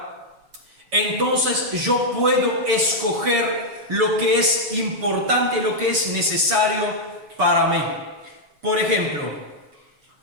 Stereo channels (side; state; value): left; late; 7.0 ms